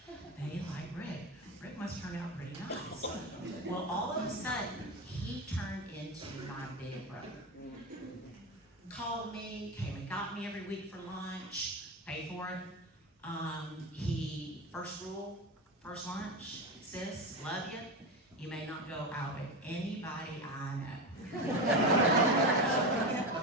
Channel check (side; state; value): both; normal; correlation 0.20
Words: they like Rick. Rick must turn out pretty nice. Well, all of a sudden, he turned into my big brother. Called me, came and got me every week for lunch, paid for it. He, first rule, first lunch, sis, love you. You may not go out with anybody I know.